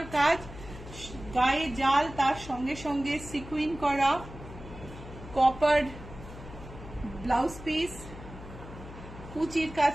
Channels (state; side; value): noise; left; hum, 14 dB below the sound